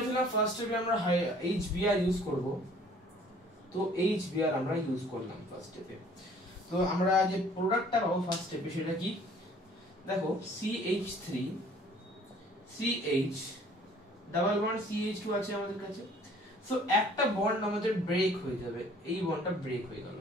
ফার্স্ট স্টেপে আমরা HBr ইউজ করব, তো HBr আমরা ইউজ করলাম ফার্স্ট স্টেপে। তো আমরা যে প্রোডাক্টটা পাবো ফার্স্ট স্টেপে সেটা কি, দেখো CH3 CH double bond CH2 আছে আমাদের কাছে। সো একটা বন্ড আমাদের ব্রেক হয়ে যাবে, এই বন্ডটা ব্রেক হয়ে গেল,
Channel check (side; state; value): both; normal; correlation 0.55